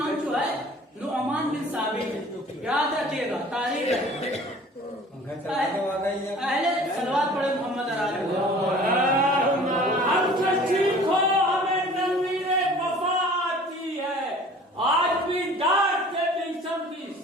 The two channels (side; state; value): both; normal; correlation 0.47